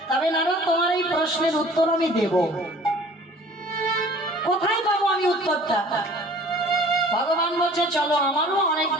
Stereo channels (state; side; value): normal; both; correlation 0.49